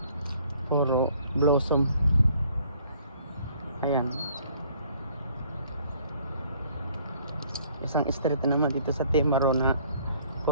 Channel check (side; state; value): both; inverted; correlation -0.60